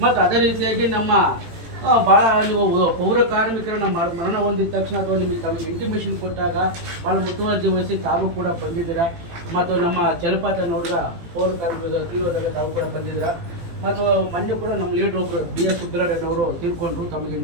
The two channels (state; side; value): late; left; 18 ms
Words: ಮತ್ತು ಅದೇ ರೀತಿಯಾಗಿ ನಮ್ಮ ಭಾಳ ನೀವು ಪೌರ ಕಾರ್ಮಿಕರನ್ನ ಮರಣ ಹೊಂದಿದ ತಕ್ಷಣ ಅಥವಾ ನಿಮಗೆ ತಮಗೆ ಇಂಟಿಮೇಷನ್ ಕೊಟ್ಟಾಗ ಭಾಳ ಮುತುವರ್ಜಿ ವಹಿಸಿ ತಾವು ಕೂಡ ಬಂದಿದ್ದೀರಾ. ಮತ್ತು ನಮ್ಮ ಜಲಪಾತ ನೋಡಿದ ಪೌರ ಕಾರ್ಮಿಕರ ತೀವ್ರದಾಗ ತಾವು ಕೂಡ ಬಂದಿದ್ದೀರಾ. ಮತ್ತು ಮೊನ್ನೆ ಕೂಡ ನಮ್ಮ ಲೀಡರ್ ಒಬ್ಬರು BS ಸುಬ್ರಹ್ಮಣ್ಯನವರು ತೀರ್ಕೊಂಡ್ರು, ತಮಗೆ